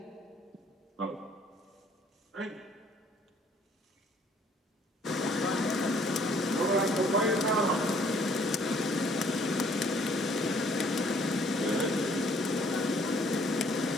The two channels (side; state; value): both; normal; correlation 0.61